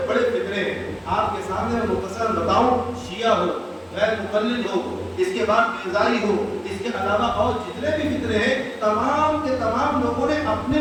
بڑے فتنے ہیں آپ کے سامنے میں مختصر بتاؤں، شیعہ ہو، غیر مقلد ہو، اس کے بعد بیزائی ہو، اس کے علاوہ اور جتنے بھی فتنے ہیں تمام کے تمام لوگوں نے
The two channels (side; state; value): both; identical; correlation 1.00